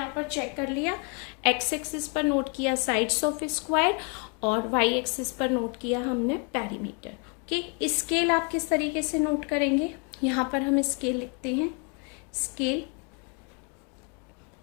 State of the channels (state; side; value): quieter; right; 35.6 dB